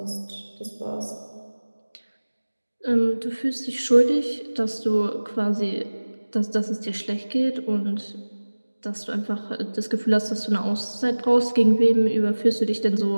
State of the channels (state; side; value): inverted; both; correlation -1.00